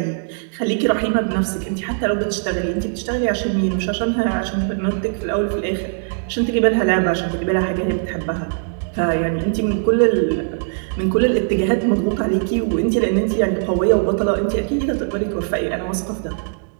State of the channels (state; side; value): silent; left; digital silence